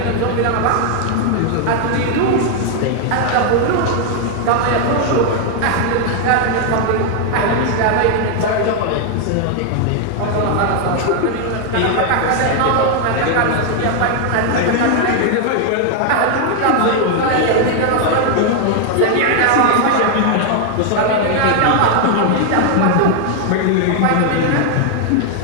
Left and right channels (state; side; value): different; both; correlation 0.00